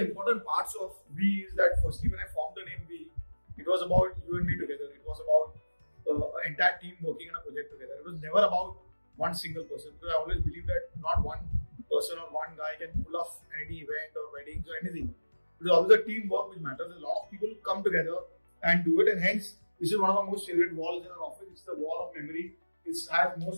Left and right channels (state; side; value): inverted; both; correlation -1.00